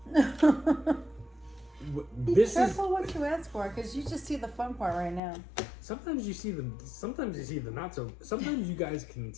Be This is careful what you ask for, because you just see the fun part right now. sometimes you see the not so. Sometimes you guys can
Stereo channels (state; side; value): drops out; right; at 5.2 s